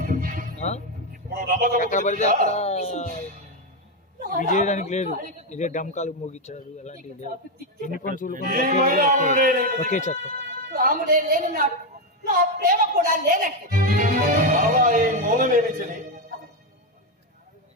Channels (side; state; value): both; normal; correlation 0.07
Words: ఇప్పుడు నమ్మకం ఎక్కడ పడితే అక్కడ రాముడు ఇది చేయడానికి లేదు. ఇదే డమ్కాలు మోగించారు అలాంటివి లేదు. యూనిఫామ్ సివిల్ కోడ్ ఒకే చట్టం. రాముడే లేనున్నాడు, నా ప్రేమ కూడా లేనట్టు. బాబా, ఈ మౌనమేమి చలి.